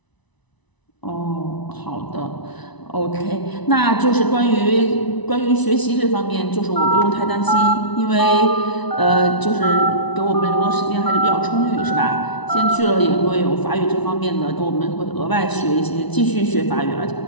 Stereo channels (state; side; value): late; right; 1.0 ms